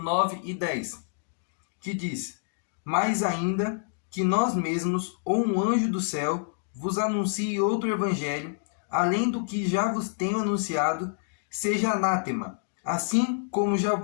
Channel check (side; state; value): right; silent; digital silence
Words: e 10. Que diz: Mais ainda que nós mesmos, ou um anjo do céu, vos anuncie outro evangelho, além do que já vos tenho anunciado, seja anátema. Assim como já